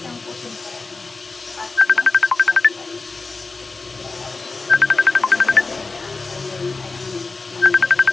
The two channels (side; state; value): right; quieter; 3.9 dB